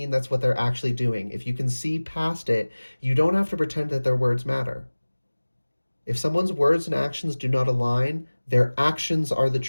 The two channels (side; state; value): both; inverted; correlation -1.00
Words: that's what they're actually doing. If you can see past it, you don't have to pretend that their words matter. If someone's words and actions do not align, their actions are the